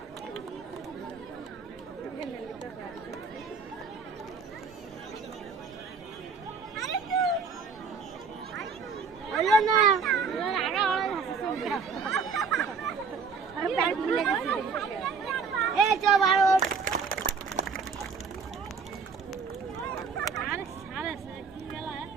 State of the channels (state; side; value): quieter; left; 5.3 dB